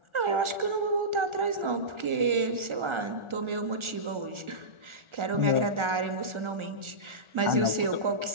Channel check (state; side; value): late; left; 1.4 ms